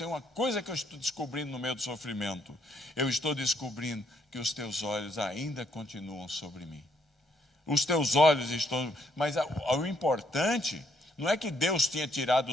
uma coisa que eu estou descobrindo no meio do sofrimento. Eu estou descobrindo que os teus olhos ainda continuam sobre mim. Os teus olhos estão... Mas o importante não é que Deus tinha tirado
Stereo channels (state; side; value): normal; both; correlation 0.71